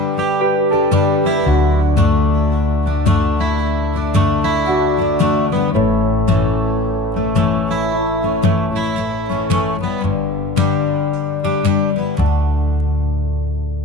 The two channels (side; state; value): both; normal; correlation 0.42